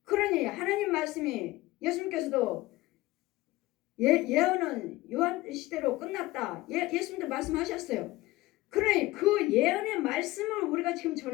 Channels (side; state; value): right; quieter; 18.5 dB